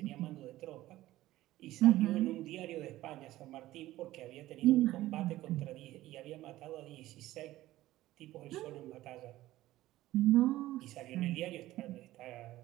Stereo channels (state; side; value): quieter; left; 15.9 dB